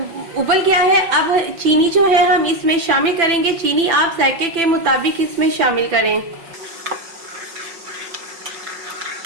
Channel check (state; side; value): late; left; 5.9 ms